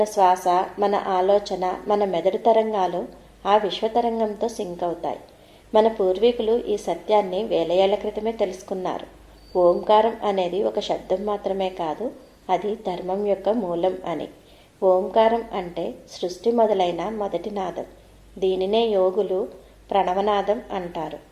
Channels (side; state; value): both; identical; correlation 1.00